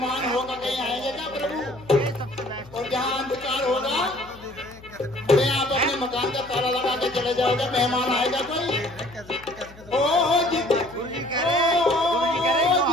होगा कहीं आएंगे क्या प्रभु? और जहाँ अंधकार होगा, अरे आप अपने मकान का ताला लगा के चले जाओगे, मेहमान आएगा कोई? ओ जिस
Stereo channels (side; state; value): left; noise; hum, 21 dB below the sound